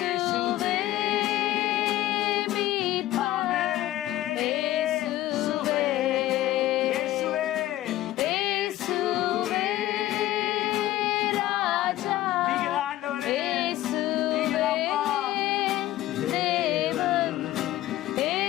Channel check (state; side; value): quieter; right; 14.9 dB